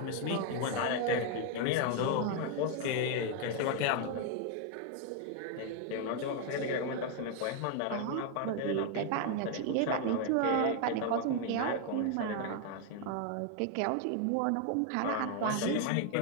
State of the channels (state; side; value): different; both; correlation 0.01